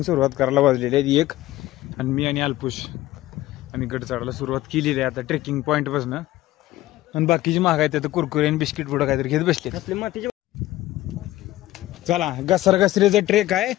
सुरुवात करायला वाजलेली आहे 1. आणि मी आणि अल्पुश आम्ही गड चढायला सुरुवात केलेली आहे आता ट्रेकिंग पॉइंट पासून. आणि बाकीची महाग आहेत आता कुरकुरे आणि बिस्किट पुढं काहीतरी घेत बसले. चला घसरघसरीचा ट्रेक आहे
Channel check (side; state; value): right; quieter; 16.0 dB